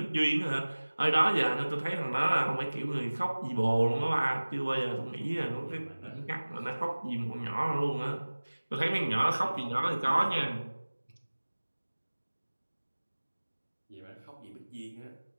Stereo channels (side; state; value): both; inverted; correlation -1.00